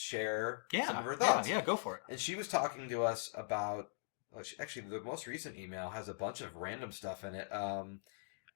some of her thoughts. Yeah, go for it. And she was talking to us about... Actually, the most recent email has a bunch of random stuff in it.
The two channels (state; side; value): silent; right; digital silence